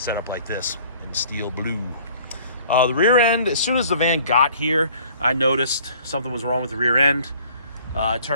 up like this in steel blue. The rear end, as soon as the van got here, I noticed something was wrong with the rear end. It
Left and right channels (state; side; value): inverted; both; correlation -0.55